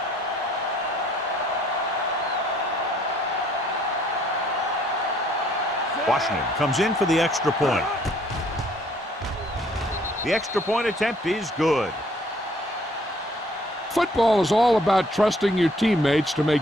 Washington comes in for the extra point. The extra point attempt is good. Football is all about trusting your teammates to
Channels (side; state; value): both; normal; correlation 0.62